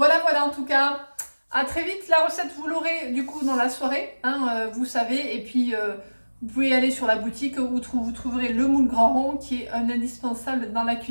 en tout cas, à très vite. La recette, vous l'aurez du coup dans la soirée, hein, vous savez. Et puis, vous pouvez aller sur la boutique où vous trouverez le moule grand rond, qui est un indispensable dans la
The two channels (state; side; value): inverted; both; correlation -1.00